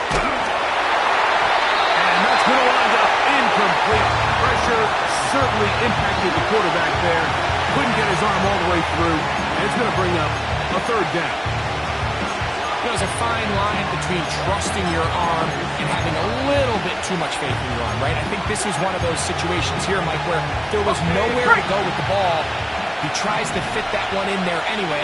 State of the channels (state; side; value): identical; both; correlation 1.00